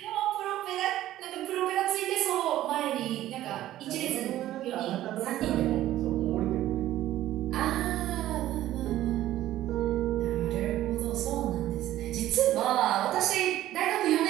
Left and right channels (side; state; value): left; quieter; 13.9 dB